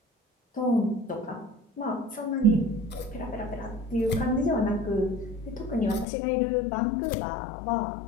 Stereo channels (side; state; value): right; drops out; at 6.1 s